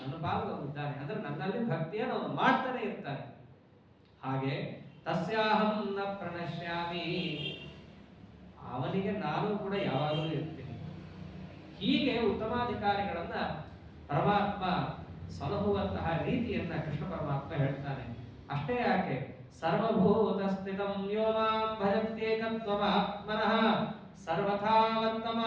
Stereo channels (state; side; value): identical; both; correlation 1.00